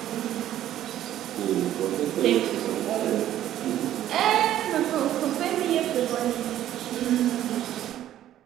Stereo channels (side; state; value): left; quieter; 12.3 dB